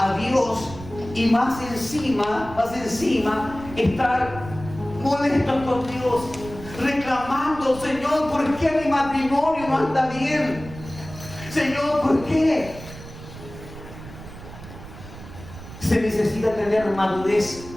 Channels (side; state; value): right; noise; rumble, 14 dB below the sound